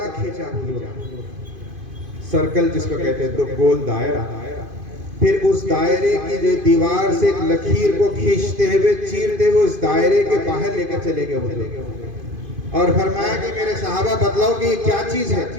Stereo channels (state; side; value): late; left; 2.5 ms